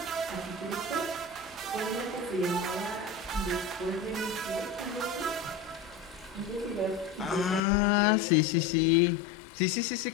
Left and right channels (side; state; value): right; drops out; at 7.6 s